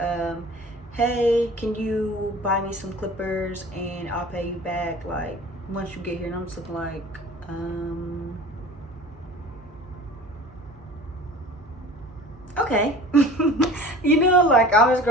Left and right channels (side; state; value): both; normal; correlation 0.42